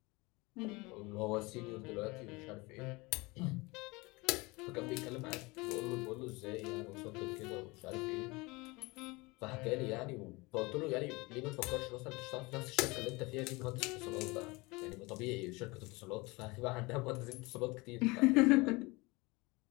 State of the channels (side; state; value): right; quieter; 24.5 dB